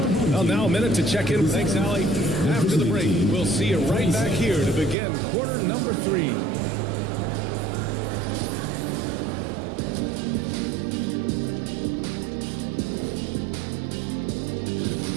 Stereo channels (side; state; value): left; drops out; at 5.0 s